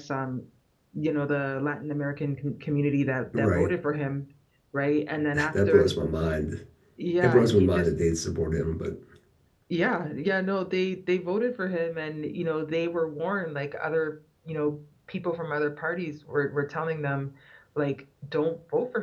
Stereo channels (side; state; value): both; identical; correlation 1.00